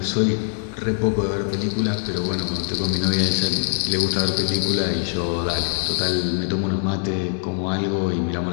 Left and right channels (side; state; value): right; silent; 64 dB below the other